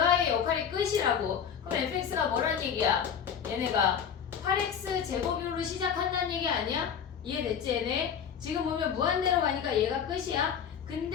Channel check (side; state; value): right; quieter; 7.8 dB